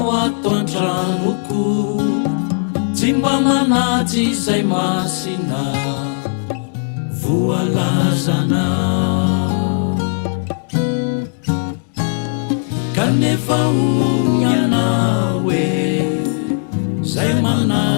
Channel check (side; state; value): right; silent; digital silence